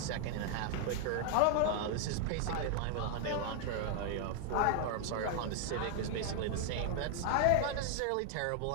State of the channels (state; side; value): different; both; correlation 0.00